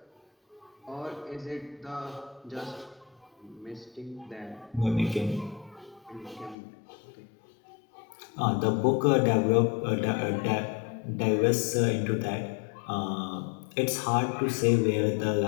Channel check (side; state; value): right; drops out; at 6.6 s